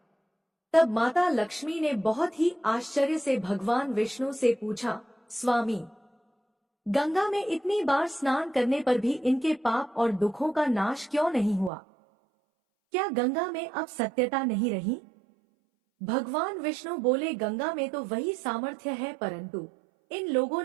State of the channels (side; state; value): left; drops out; at 11.7 s